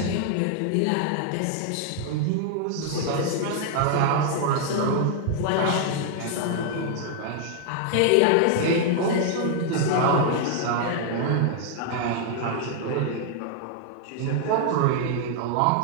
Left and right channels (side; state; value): both; different; correlation 0.00